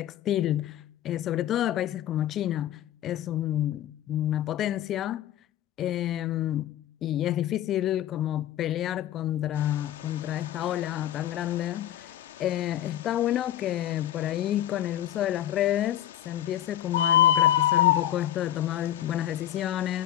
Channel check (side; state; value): right; quieter; 12.0 dB